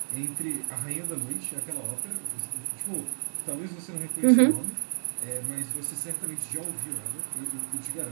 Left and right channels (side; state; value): left; silent; digital silence